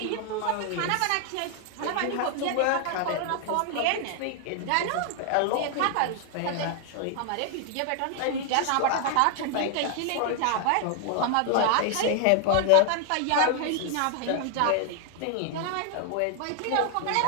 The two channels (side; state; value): both; different; correlation 0.00